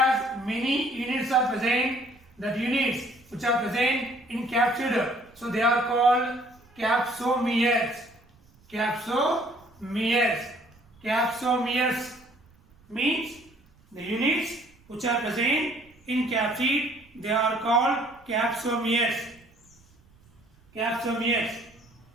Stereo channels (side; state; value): right; noise; rumble, 30 dB below the sound